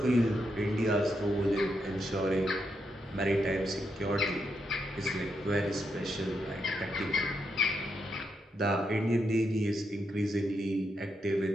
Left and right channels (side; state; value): both; normal; correlation 0.82